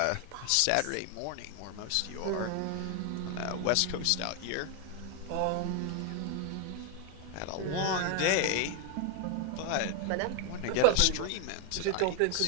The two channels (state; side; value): different; both; correlation 0.01